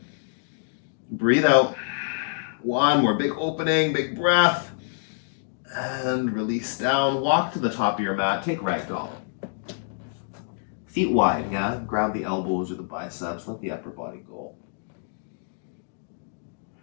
Breathe out. One more big opening, big breath. And release down. Walk to the top of your mat. Take ragdoll. Feet wide, yeah? Grab the elbows or the biceps. Let the upper body go.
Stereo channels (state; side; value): silent; right; digital silence